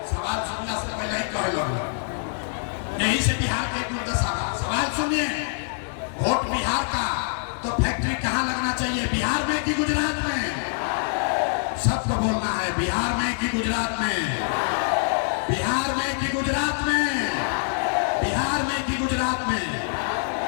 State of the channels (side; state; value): right; silent; digital silence